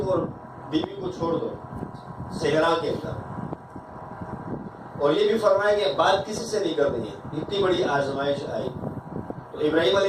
اور بیوی کو چھوڑ دو صحرا کے اندر. اور یہ بھی فرمایا کہ بات کسی سے نہیں کرنی ہے. اتنی بڑی آزمائش آئی. تو ابراہیم علیہ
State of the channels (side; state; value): both; identical; correlation 1.00